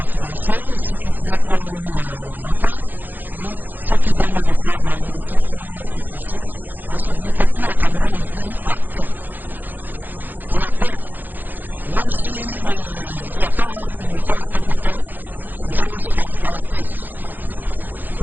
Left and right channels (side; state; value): left; late; 0.086 ms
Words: financé, ceux qui prient pour la paix, hein, ceux qui donnent de quoi, de la nourriture pour ceux. Ouais, ça veut dire que tous les Camerounais ont pris acte de la paix. Même s'il n'y a pas une unité en tant que telle, les gens ont cette envie de la paix.